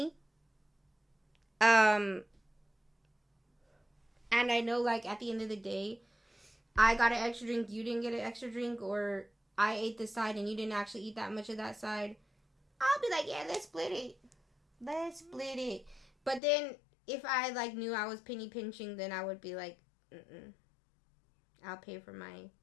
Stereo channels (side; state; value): right; drops out; at 16.4 s